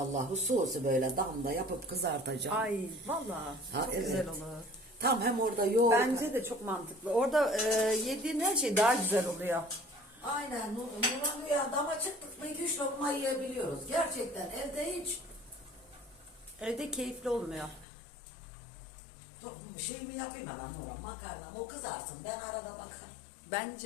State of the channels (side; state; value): right; drops out; at 17.9 s